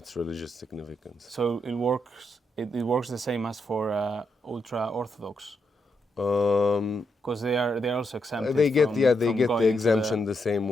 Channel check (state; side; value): normal; both; correlation 0.81